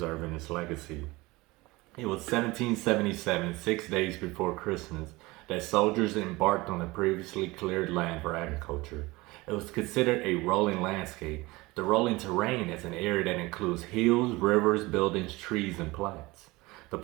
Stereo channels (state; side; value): quieter; left; 21.8 dB